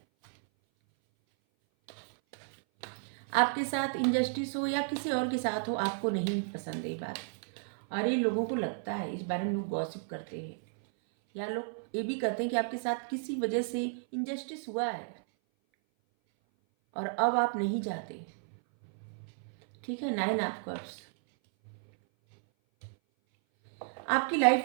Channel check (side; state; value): left; silent; 56 dB below the other